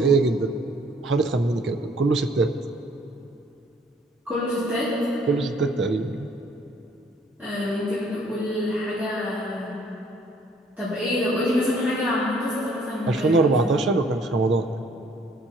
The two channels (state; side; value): normal; both; correlation 0.60